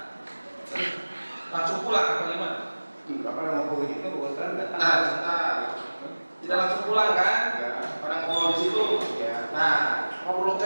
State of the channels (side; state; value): both; inverted; correlation -1.00